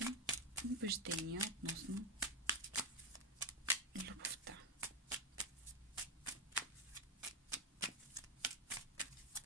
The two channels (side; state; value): both; normal; correlation 0.07